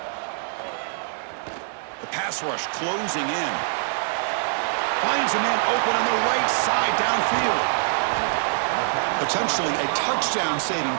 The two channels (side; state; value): left; silent; digital silence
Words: The pass rush closing in. Finds a man open on the right side downfield. Potentially a touchdown-saving